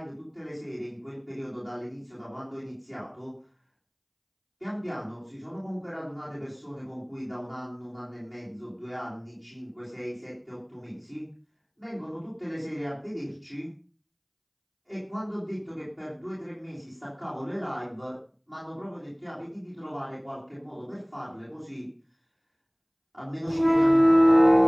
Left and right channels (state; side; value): identical; both; correlation 1.00